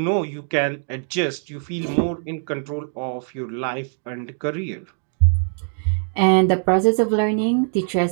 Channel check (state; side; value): silent; left; 55 dB below the other